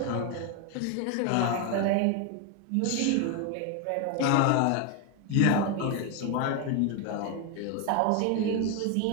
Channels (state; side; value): different; both; correlation 0.01